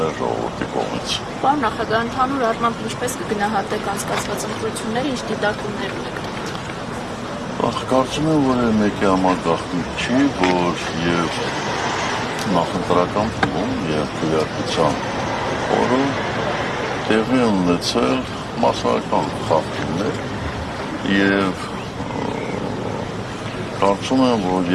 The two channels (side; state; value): both; identical; correlation 1.00